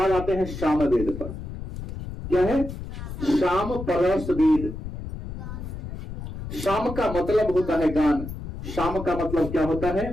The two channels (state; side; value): noise; left; rumble, 8 dB below the sound